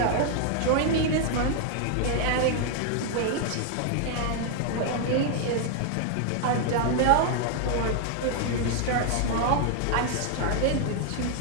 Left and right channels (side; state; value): both; different; correlation 0.00